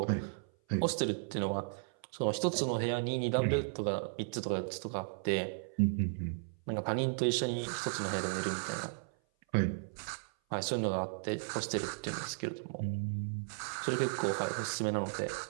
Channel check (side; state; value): left; silent; 54 dB below the other